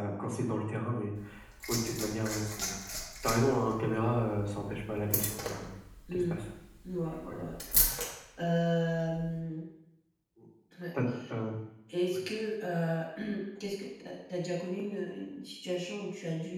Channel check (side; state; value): both; identical; correlation 1.00